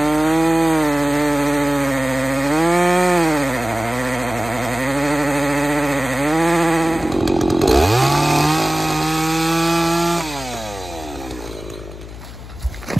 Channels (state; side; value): noise; left; hum, 14 dB below the sound